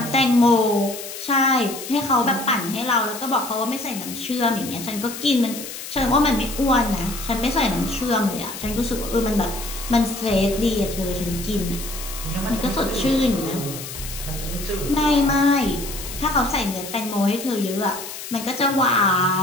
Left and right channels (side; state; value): left; noise; hiss, 10 dB below the sound